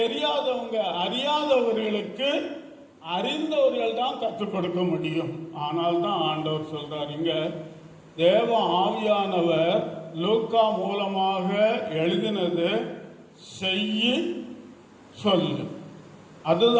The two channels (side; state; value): both; identical; correlation 1.00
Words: அறியாதவர்களுக்கு அறிந்தவர்கள் தான் கற்றுக் கொடுக்க முடியும். ஆனால் தான் ஆண்டவர் சொல்றார் இங்க, தேவ ஆவியானவர் லூக்கா மூலமாக எழுதினது செய்யி சொல்லு.